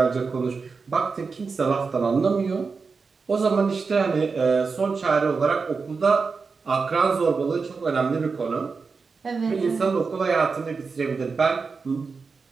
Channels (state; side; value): quieter; left; 4.8 dB